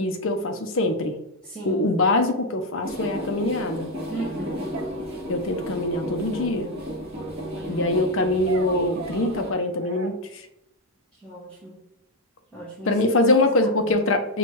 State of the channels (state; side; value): normal; both; correlation 0.04